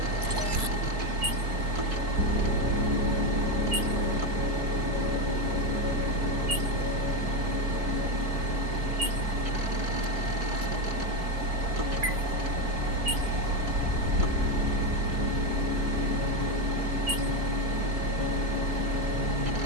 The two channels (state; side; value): late; left; 4.5 ms